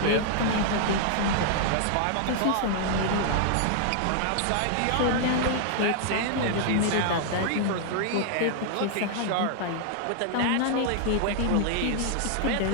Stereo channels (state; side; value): different; both; correlation -0.01